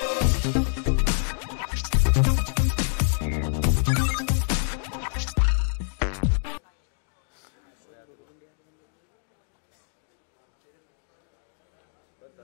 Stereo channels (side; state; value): right; silent; digital silence